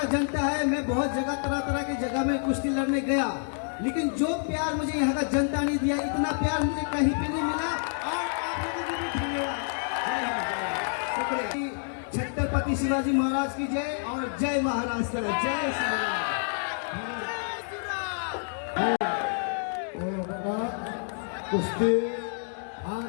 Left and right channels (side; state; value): right; silent; digital silence